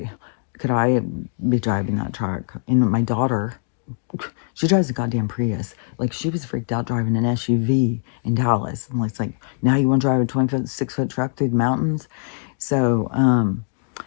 could I be driving that truck. And my daughter, she drives a goddamn Prius. Like, she was freaked out driving an SUV in Dallas. And it's like, now you want to drive a 26-foot truck through the mountains? So,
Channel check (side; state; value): right; silent; 64 dB below the other